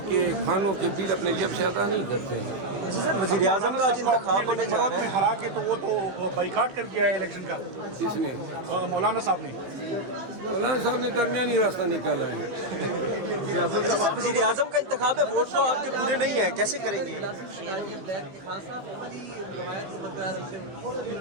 کے کھانوں کے بل اپنے جیب سے ادا نہیں کرتے ہیں۔ وزیر اعظم کا آج انتخاب ہونے جا رہا ہے، ہرا کے تو وہ تو بائیکاٹ کر دیا ہے الیکشن کا کس نے؟ مولانا صاحب نے۔ مولانا صاحب نے درمیانی راستہ نکالا ہے۔ اچھا سر، وزیر اعظم کا انتخاب ہے، ووٹ تو آپ کے پورے نہیں ہیں، کیسے کریں گے؟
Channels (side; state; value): left; late; 15 ms